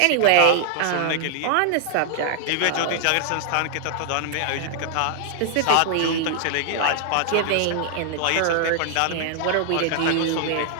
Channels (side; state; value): both; different; correlation -0.01